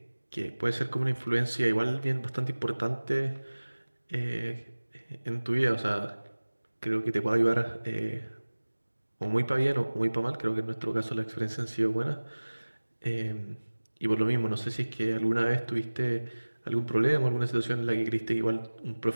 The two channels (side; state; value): both; inverted; correlation -1.00